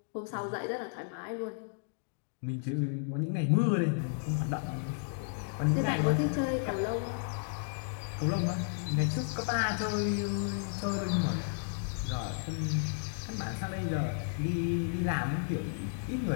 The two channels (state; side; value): silent; right; digital silence